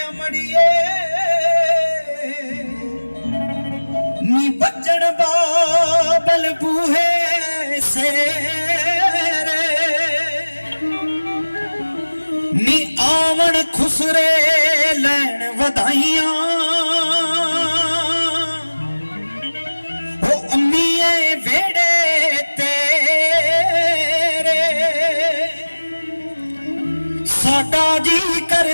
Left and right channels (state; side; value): inverted; both; correlation -1.00